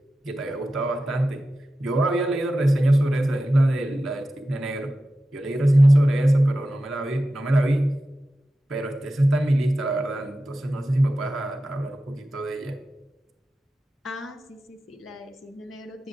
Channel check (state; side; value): normal; both; correlation 0.93